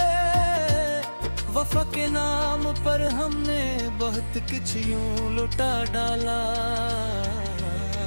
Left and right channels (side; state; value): both; inverted; correlation -1.00